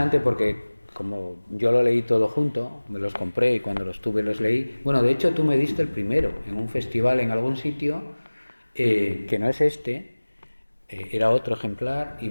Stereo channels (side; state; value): both; inverted; correlation -1.00